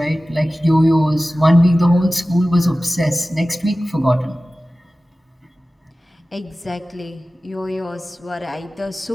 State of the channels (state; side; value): normal; both; correlation 0.96